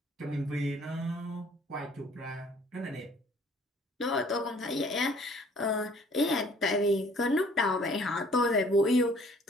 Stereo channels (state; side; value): normal; both; correlation 0.57